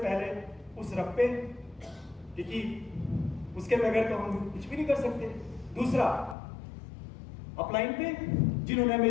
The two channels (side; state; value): right; drops out; at 6.4 s